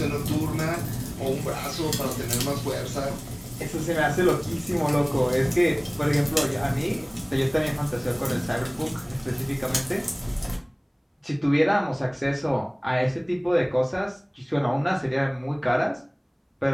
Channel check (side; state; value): both; identical; correlation 1.00